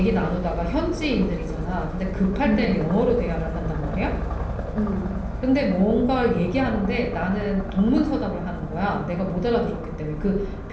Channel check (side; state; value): both; identical; correlation 1.00